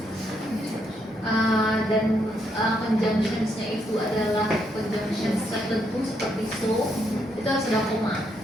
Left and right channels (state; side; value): normal; both; correlation 0.76